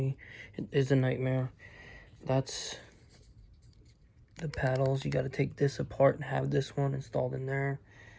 it is a nightmare. That's the paddles. You got to take this apart and have this one installed in there.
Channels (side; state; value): both; identical; correlation 1.00